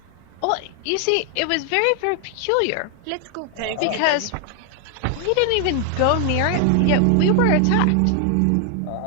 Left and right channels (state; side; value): different; both; correlation 0.01